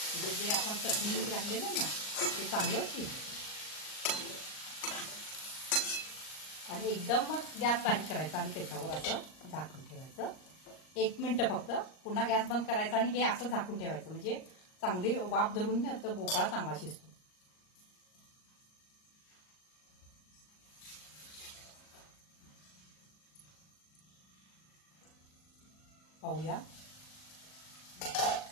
म्हणजे जे आपण चटणी मीठ घातलेलं ना ते चांगलं शिजतं। आणि एकदम मग गॅस बारीक करायचा आणि त्याच्यावर असं झाकून ठेवायचं 1 मिनिट फक्त, पुन्हा गॅस बंद करायचा आणि हे असं झाकून ठेवायचं, म्हणजे चांगली वाफ धरून तर भोपळा चांगला शिजतो। पाहूया,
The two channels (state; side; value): late; right; 38 ms